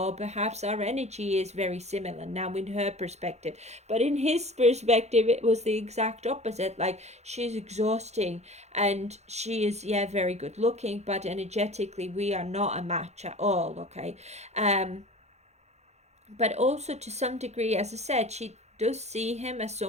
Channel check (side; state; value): left; late; 0.32 ms